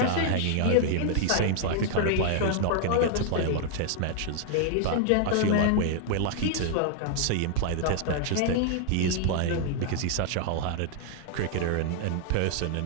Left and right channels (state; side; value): different; both; correlation 0.00